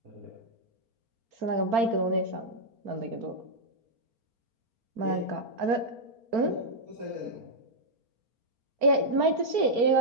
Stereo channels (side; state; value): left; late; 4.4 ms